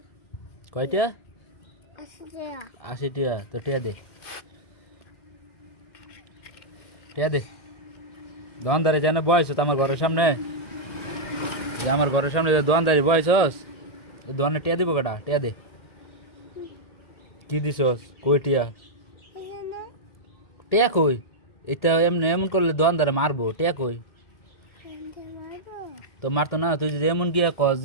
কয়টা? 80 টাকা। তো টিয়া দে, টিয়া দে। দোকানদারে যেন বয়স আমার ঘরের সামনে, যে আমার ঘরের সামনে দোকানদারি বয়সস, দোকানে টিয়া দিব কটা? টিয়া দে। কি দিছস? কই টিয়া? টিয়া কই? এটা এমনি এমন করলে দোকানদারে মারবো। টিয়া কই? তো মারতো না? তুই যদি এমন গিয়া কস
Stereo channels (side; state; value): right; late; 1.8 ms